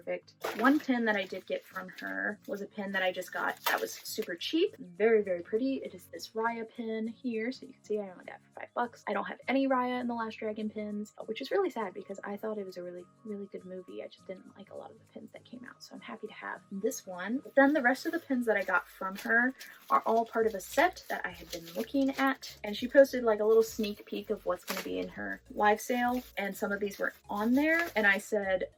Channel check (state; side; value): identical; both; correlation 1.00